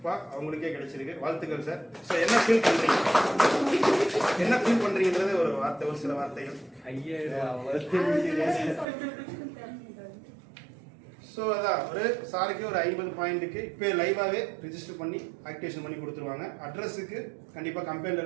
அவங்களுக்கே கிடைச்சிருக்கு. வாழ்த்துக்கள் சார். ஸோ என்ன ஃபீல் பண்றீங்க? என்ன ஃபீல் பண்றீங்கன்றது ஒரு வார்த்தை, ஒரு சில வார்த்தைகள். ஸோ அதான் ஒரு சாருக்கு ஒரு 50 பாயிண்ட்டுக்கு இப்போ லைவாகவே ரிஜிஸ்டர் பண்ணி ஆக்டிவேஷன் பண்ணி கொடுத்துருவாங்க. அட்ரஸுக்கு கண்டிப்பாக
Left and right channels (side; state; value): left; drops out; at 8.8 s